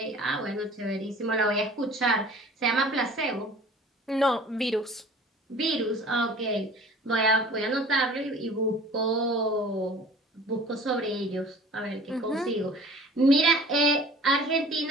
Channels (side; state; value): both; normal; correlation 0.47